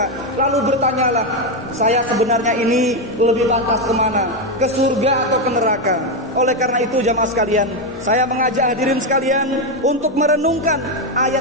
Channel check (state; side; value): normal; both; correlation 0.07